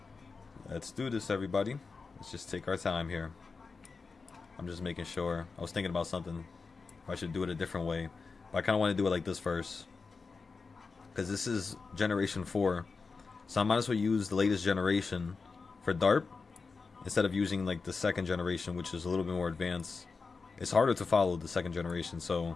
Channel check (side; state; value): right; quieter; 4.6 dB